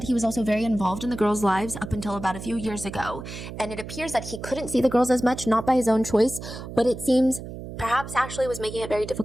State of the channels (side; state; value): right; noise; hum, 10 dB below the sound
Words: he was also very involved in the girls' lives up until about a few years ago, and it appears that he couldn't see the girls as much, not by his own choice, but it seems perhaps Ashley was making it very